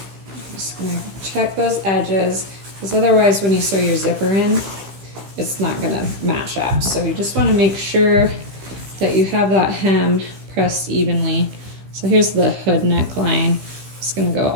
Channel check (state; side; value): late; left; 15 ms